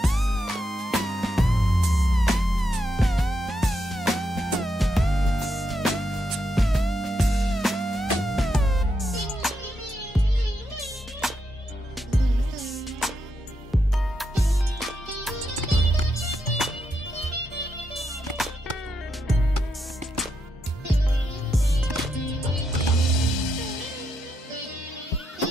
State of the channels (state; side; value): normal; both; correlation 0.82